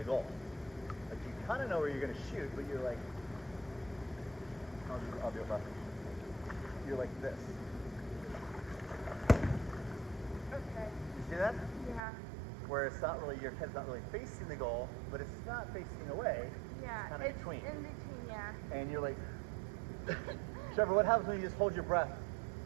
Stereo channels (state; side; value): drops out; left; at 12.0 s